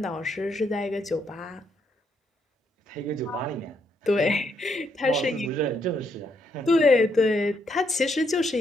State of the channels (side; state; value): both; normal; correlation 0.75